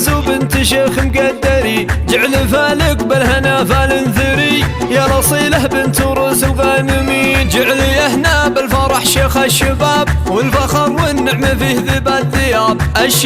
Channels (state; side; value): identical; both; correlation 1.00